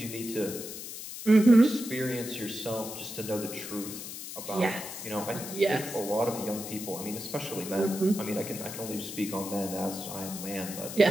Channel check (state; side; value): noise; left; hiss, 9 dB below the sound